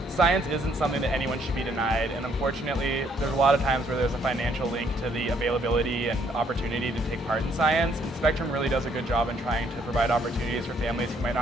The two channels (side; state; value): both; normal; correlation 0.68